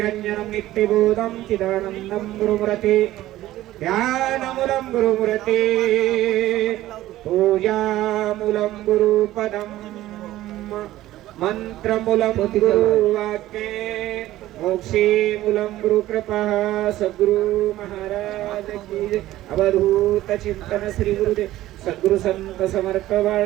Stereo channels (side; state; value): left; quieter; 15.1 dB